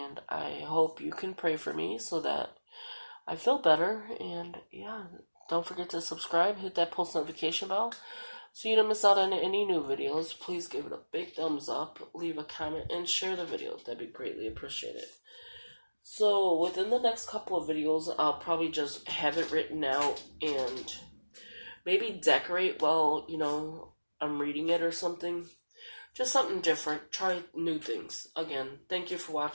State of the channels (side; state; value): both; inverted; correlation -1.00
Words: I hope you can pray for me so that I feel better. And yeah, don't forget to subscribe, hit that post notification bell so you don't miss out on any new videos. Please give it a big thumbs up, leave a comment, and share the video. That'd be greatly appreciated. So within the next couple of videos, I'll probably just have it written out and maybe decorate while, I'm reading it or something. Just something different. Try new things. Again, thank you for